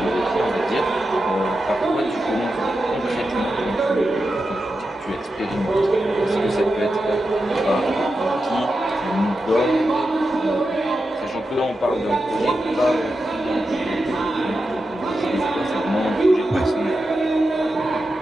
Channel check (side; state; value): both; normal; correlation 0.89